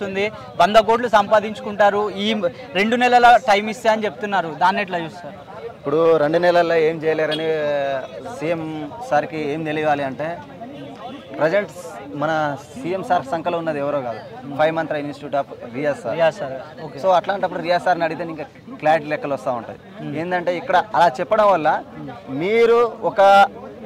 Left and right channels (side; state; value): both; identical; correlation 1.00